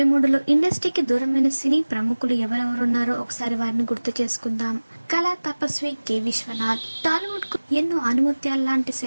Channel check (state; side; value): inverted; both; correlation -1.00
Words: ఇండస్ట్రీకి దూరమైన సినీ ప్రముఖులు ఎవరెవరున్నారో ఒకసారి వారిని గుర్తు చేసుకుందాం. కళా తపస్వి కె విశ్వనాథ్. టాలీవుడ్ కు ఎన్నో ఆణిముత్యాల్లాంటి